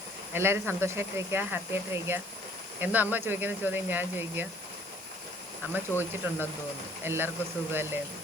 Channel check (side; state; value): right; noise; hiss, 20 dB below the sound